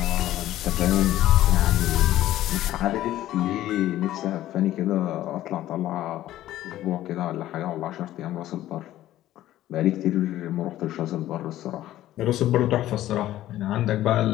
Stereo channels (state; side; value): quieter; right; 13.9 dB